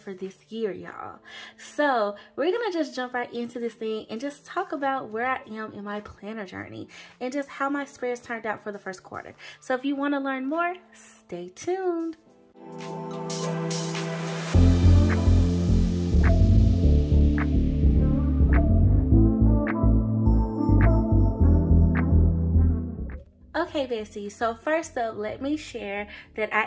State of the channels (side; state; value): both; identical; correlation 1.00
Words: this year, y'all. So we're gonna just jump right into this thing and just talk about where I am in my planner journey and just how my spreads turned out for the first quarter. So if you want to learn more, stay tuned. Okay bestie, so first up, let me share that